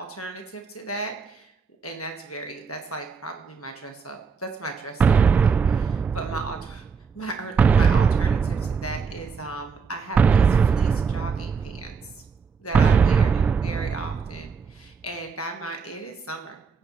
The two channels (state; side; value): quieter; left; 5.6 dB